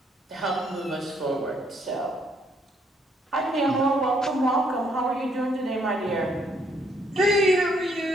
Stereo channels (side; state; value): both; normal; correlation 0.69